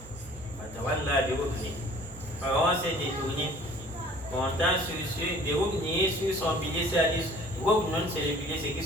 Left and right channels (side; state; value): both; normal; correlation 0.50